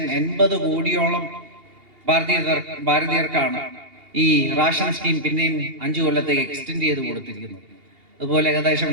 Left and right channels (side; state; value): left; late; 2.8 ms